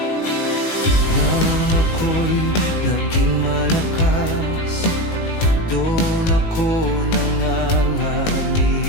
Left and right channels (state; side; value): late; right; 18 ms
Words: Nang ako'y naging malakas, doon ako